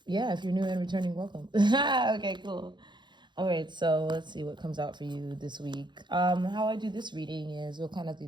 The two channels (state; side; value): late; left; 0.22 ms